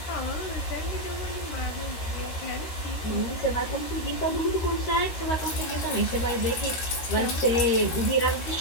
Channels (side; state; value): right; late; 13 ms